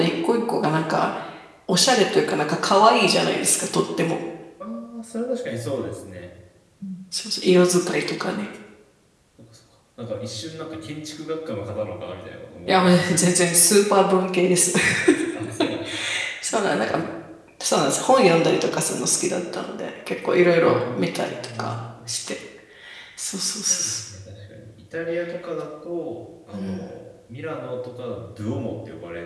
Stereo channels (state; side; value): identical; both; correlation 1.00